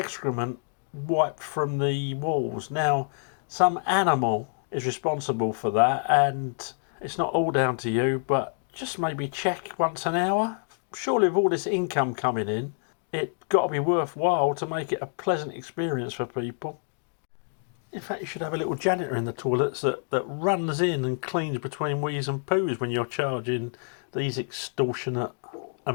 wiped from the walls. Now, some animal is responsible for that, and it's not all down to you, but just maybe check once an hour. Surely with all this income coming in, it's got to be worthwhile to make it a pleasant experience for people. In fact, you should have a little janitor in the toilets that runs in and cleans between wheeze and poos when you're charging these extortionate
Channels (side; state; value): right; silent; digital silence